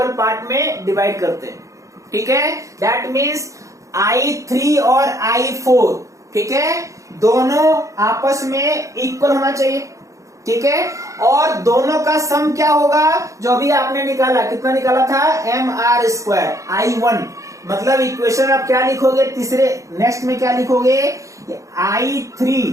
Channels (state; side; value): late; left; 0.15 ms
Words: पार्ट में डिवाइड करते हैं। ठीक है, दैट मीन्स I3 और I4, ठीक है, दोनों आपस में इक्वल होना चाहिए। ठीक है, और दोनों का सम क्या होगा? जो अभी आपने निकाला, कितना निकाला था? mr² I1। मतलब इक्वेशन आप क्या लिखोगे? तीसरे नेक्स्ट में क्या लिखोगे? I3